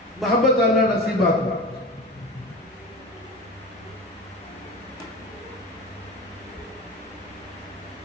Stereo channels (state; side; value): normal; both; correlation 0.29